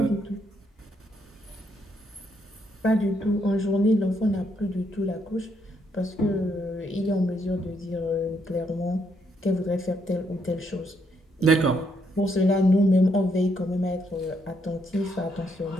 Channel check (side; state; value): both; normal; correlation 0.75